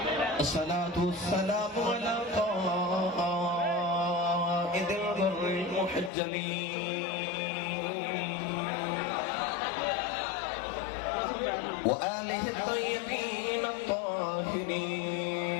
الصلاة والسلام على قائد الغر المحجلين وآله الطيبين الطاهرين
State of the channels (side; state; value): right; drops out; at 6.1 s